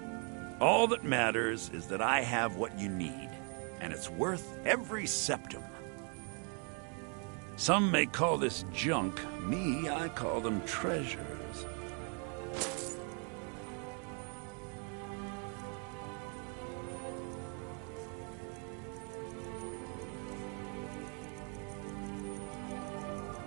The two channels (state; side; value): quieter; left; 39.0 dB